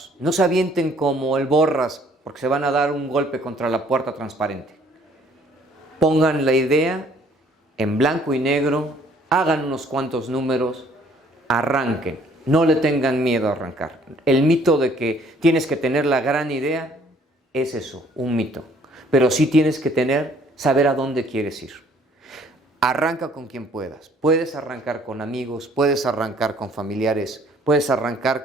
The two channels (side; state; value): both; normal; correlation 0.60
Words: No se avienten como el Borras, porque se van a dar un golpe contra la puerta transparente. Pongan la idea en blanco y negro, hagan unos cuantos números, arranquen. No le tengan miedo a arrancar. El mito de que tienes que tener la gran idea es eso, un mito. Pero sí tienes que saber a dónde quieres ir. Arranca con quien puedas. Puedes arrancar con amigos, puedes arrancar con familiares, puedes